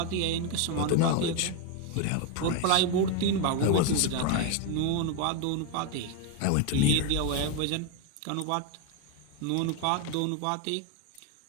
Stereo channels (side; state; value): both; different; correlation 0.02